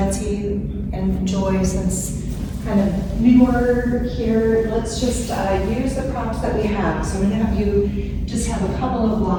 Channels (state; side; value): identical; both; correlation 1.00